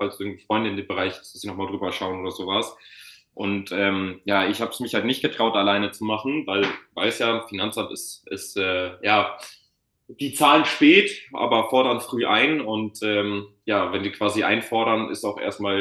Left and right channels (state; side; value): identical; both; correlation 1.00